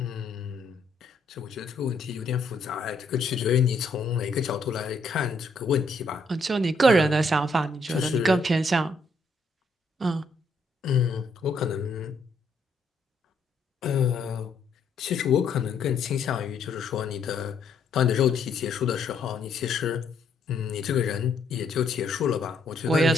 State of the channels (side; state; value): right; quieter; 3.1 dB